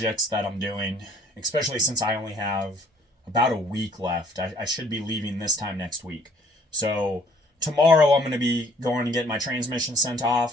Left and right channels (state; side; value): normal; both; correlation 0.60